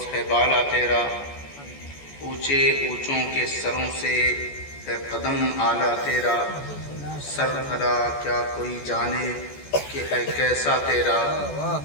ہے بالا تیرا، اونچے اونچوں کے سروں سے ہے قدم اعلیٰ تیرا، سر بھلا کیا کوئی جانے کہ ہے کیسا تیرا،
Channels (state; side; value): late; right; 14 ms